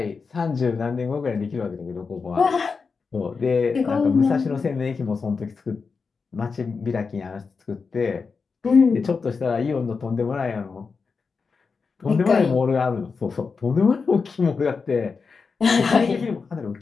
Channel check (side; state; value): right; quieter; 5.0 dB